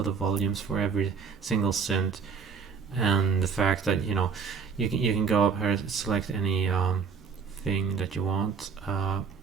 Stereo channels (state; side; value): quieter; left; 5.9 dB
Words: the volumes for every single synth, and the fact that, you know, you can go up here, select any thing that you want, and